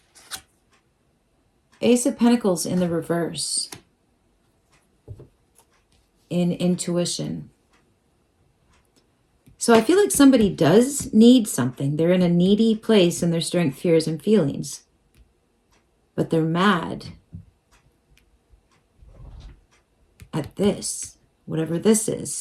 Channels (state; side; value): identical; both; correlation 1.00